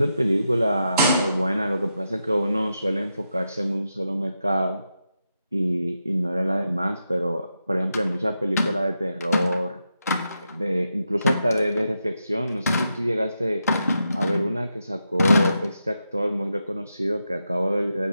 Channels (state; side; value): inverted; both; correlation -0.86